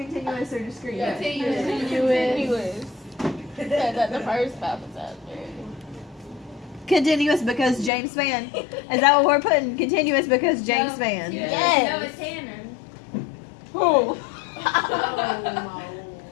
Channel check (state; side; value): drops out; right; at 7.9 s